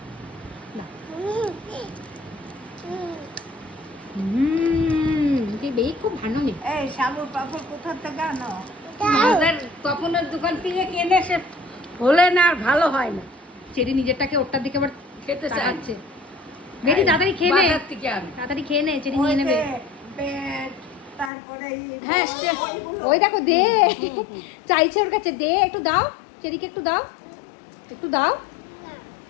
বেরি খুব ভালো নেই। এই সাবুর পাপড় কোথা থেকে আনো? আমাদের তপনের দোকান থেকে কিনে সে হলে না আর ভালো হয় না। চেরি নিজেরটাকে ওরটার দিকে আবার খেতে চাচ্ছে। বেরি তাড়াতাড়ি খেয়ে নে, বাজার থেকে আনো। তাড়াতাড়ি খেয়ে নে, চেরি নিয়ে নেবে। তারপরে হ্যাঁ ওই দেখো, দে, চাইছে ওর কাছে, দে একটু দাও, চেরিকে একটু দাও, একটু দাও।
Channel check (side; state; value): right; drops out; at 21.3 s